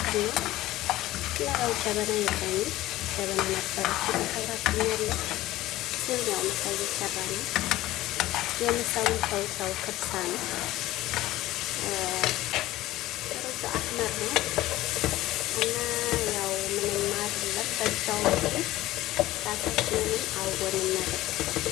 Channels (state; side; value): quieter; right; 16.4 dB